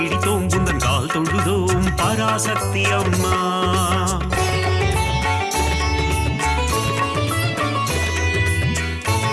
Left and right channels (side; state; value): both; identical; correlation 1.00